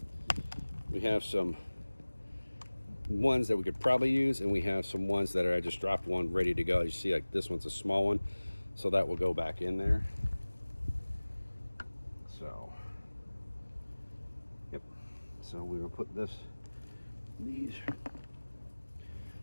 we have some ones that we could probably use, and we have some ones that I just dropped one ready to go. You see, like this one's a small one, so that will go back in there. So yep, so we will put these,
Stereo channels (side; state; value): both; inverted; correlation -1.00